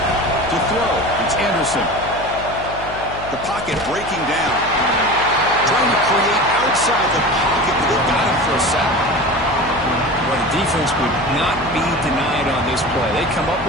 To throw, it's Anderson. The pocket breaking down. Trying to create outside the pocket, but they got him for a sack. Well, the defense would not be denied on this play. They come up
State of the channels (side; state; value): left; noise; hum, 13 dB below the sound